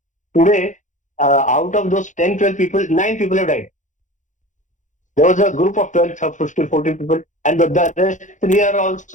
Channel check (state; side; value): late; right; 0.36 ms